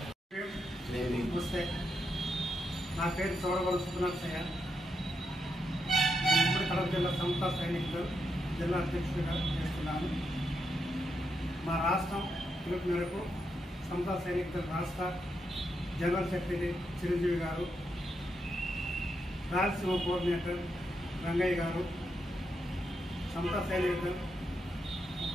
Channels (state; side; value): normal; both; correlation 0.83